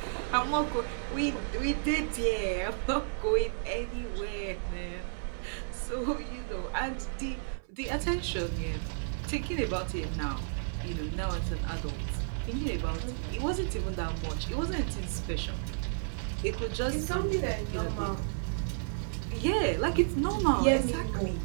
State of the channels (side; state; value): left; silent; 56 dB below the other